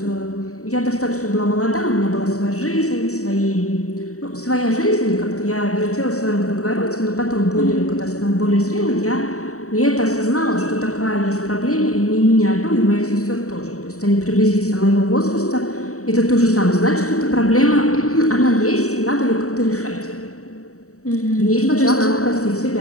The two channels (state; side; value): late; right; 0.65 ms